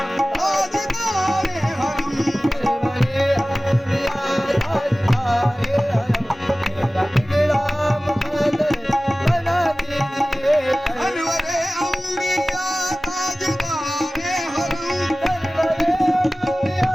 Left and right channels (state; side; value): normal; both; correlation 0.97